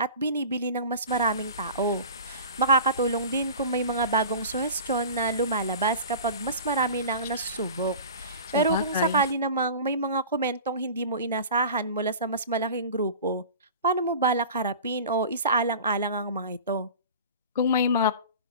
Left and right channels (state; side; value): inverted; both; correlation -0.37